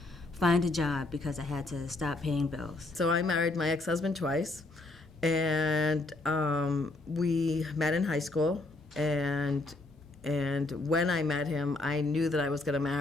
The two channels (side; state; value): right; quieter; 3.1 dB